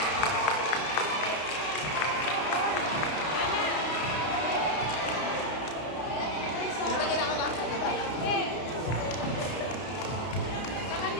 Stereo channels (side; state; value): right; late; 32 ms